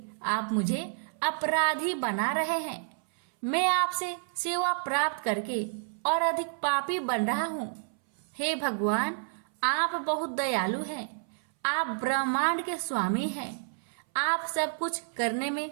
आप मुझे अपराधी बना रहे हैं। मैं आपसे सेवा प्राप्त करके और अधिक पापी बन रहा हूँ। हे भगवान, आप बहुत दयालु हैं। आप ब्रह्मांड के स्वामी हैं। आप सब कुछ करने में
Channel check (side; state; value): left; silent; 58 dB below the other